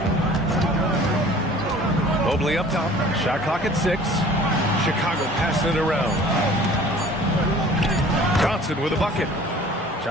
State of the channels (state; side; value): normal; both; correlation 0.48